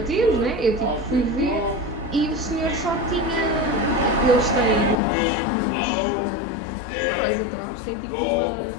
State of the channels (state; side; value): drops out; right; at 5.0 s